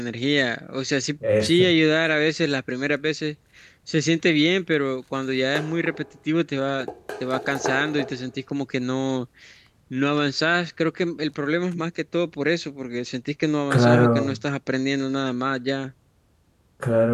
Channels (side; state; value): both; identical; correlation 1.00